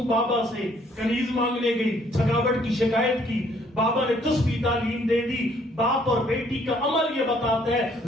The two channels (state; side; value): normal; both; correlation 0.64